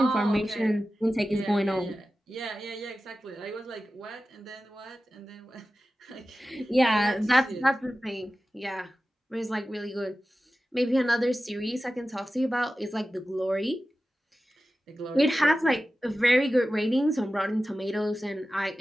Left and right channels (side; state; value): both; normal; correlation 0.94